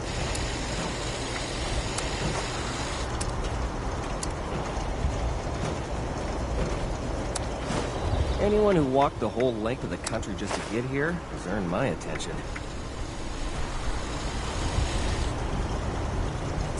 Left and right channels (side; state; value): both; identical; correlation 1.00